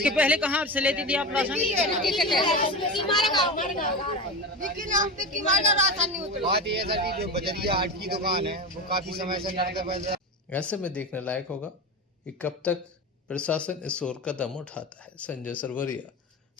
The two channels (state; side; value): normal; both; correlation 0.23